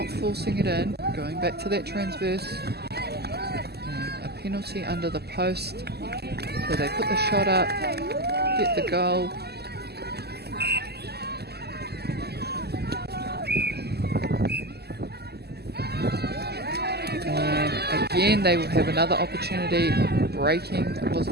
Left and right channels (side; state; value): left; late; 0.47 ms